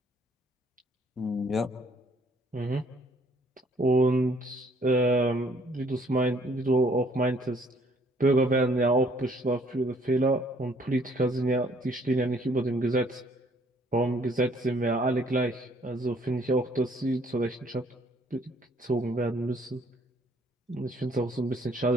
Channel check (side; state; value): both; normal; correlation 0.62